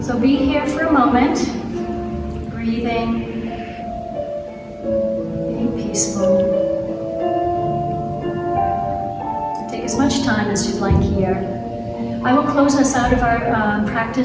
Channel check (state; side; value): identical; both; correlation 1.00